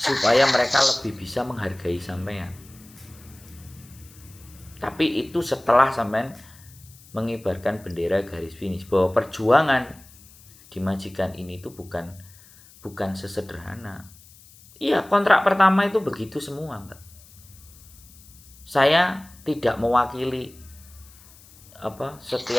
mereka lebih bisa menghargai sampean. Tapi itu setelah sampean mengibarkan bendera garis finish, bahwa perjuangan di majikan ini itu bukan sesederhana. Iya, kontrak pertama itu begitu semua, Mbak. Saya tidak mewakili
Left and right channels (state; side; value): noise; left; hiss, 24 dB below the sound